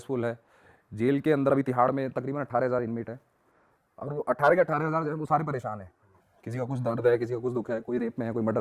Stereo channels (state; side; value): identical; both; correlation 1.00